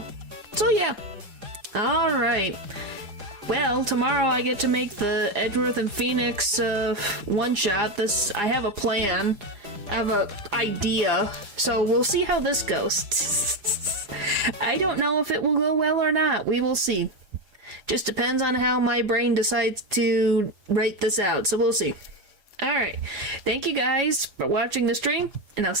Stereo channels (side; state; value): left; late; 4.9 ms